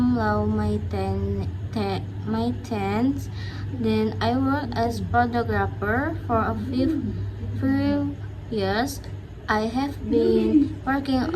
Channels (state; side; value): identical; both; correlation 1.00